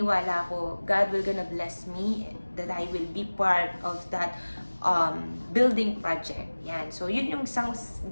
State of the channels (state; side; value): inverted; both; correlation -1.00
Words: ako, God will gonna bless me that I will be part of that building project. Yan. So, yun yung isang,